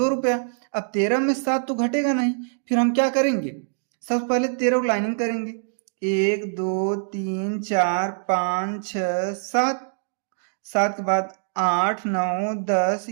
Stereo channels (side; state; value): left; silent; digital silence